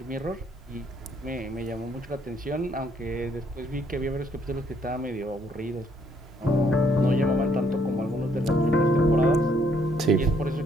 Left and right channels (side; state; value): both; normal; correlation 0.68